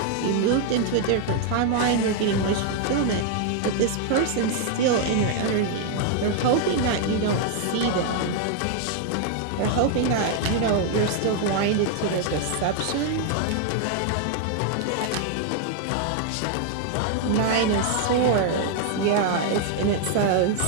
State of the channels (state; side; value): different; both; correlation 0.00